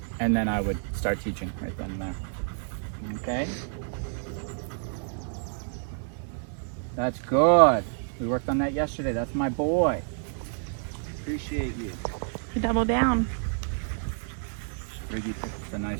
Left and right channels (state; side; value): silent; left; digital silence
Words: And then I would start teaching right then and there. Okay? That's good. We worked on that yesterday. That's my boy. Appreciate you. Double down. Riggy picked a nice